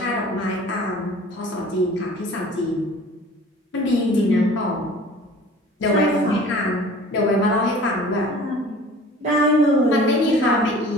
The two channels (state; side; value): normal; both; correlation 0.45